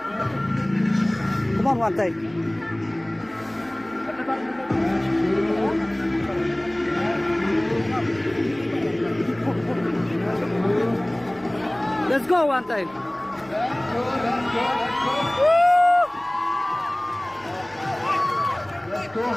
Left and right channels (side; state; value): right; noise; hum, 27 dB below the sound